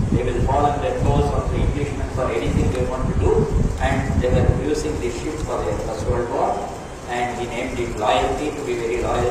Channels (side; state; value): both; identical; correlation 1.00